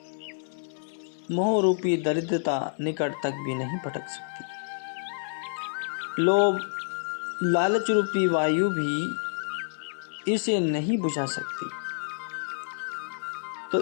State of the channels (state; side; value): silent; right; digital silence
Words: मोह रूपी दरिद्रता निकट तक भी नहीं भटक सकती। लोभ, लालच रूपी वायु भी इसे नहीं बुझा सकती। तो